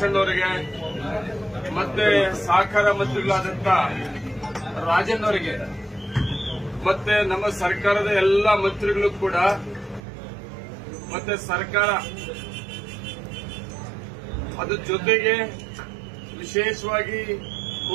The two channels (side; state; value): left; drops out; at 10.0 s